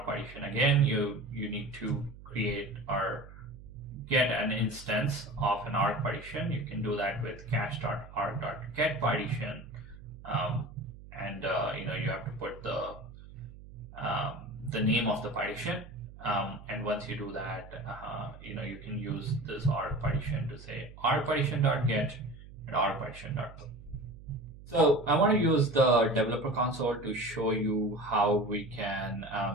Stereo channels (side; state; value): right; noise; hum, 17 dB below the sound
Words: partition, again, you need to create or get an instance of an org partition. You can do that with cache.org.getPartition, and you have to put the name of the partition. And once you do that, you can use this org partition to say org-partition.get and org-partition.put. So I want to use the developer console to show you how we can